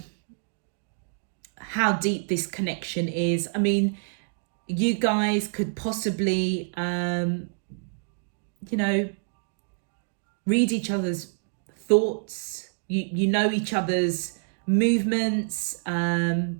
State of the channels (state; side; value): silent; left; digital silence